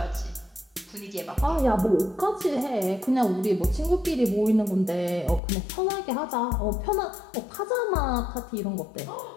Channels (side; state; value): right; drops out; at 5.4 s